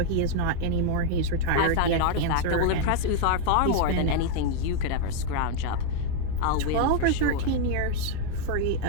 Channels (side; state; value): both; different; correlation 0.00